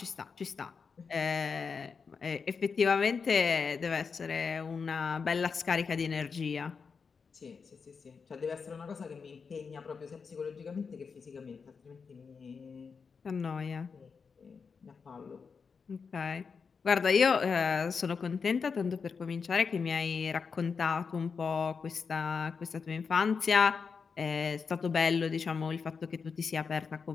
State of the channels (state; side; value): quieter; right; 5.5 dB